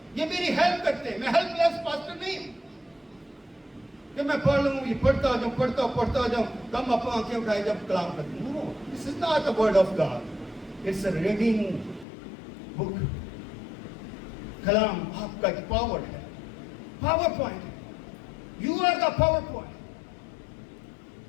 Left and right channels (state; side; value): drops out; right; at 12.1 s